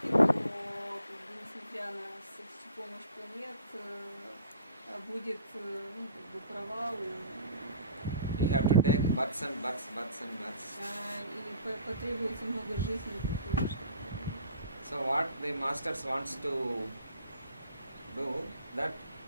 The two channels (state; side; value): inverted; both; correlation -0.50